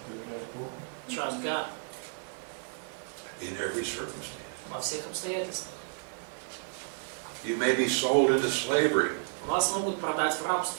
Trust God. In every circumstance. Во всех обстоятельствах. You may be sold into slavery. Вас могут продать в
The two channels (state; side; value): silent; left; digital silence